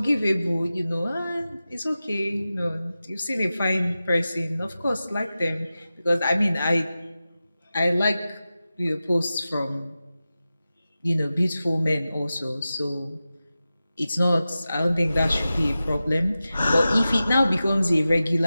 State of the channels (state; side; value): inverted; both; correlation -0.94